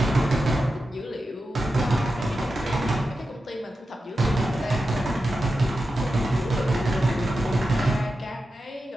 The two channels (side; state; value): both; normal; correlation 0.91